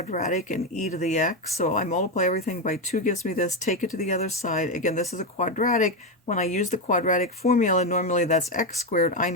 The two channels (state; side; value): normal; both; correlation 0.10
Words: in e to the x. So I multiply everything by 2 gives me this. Take it to the other side. Again, this is a quadratic. When I use the quadratic formula, normally that's x squared. I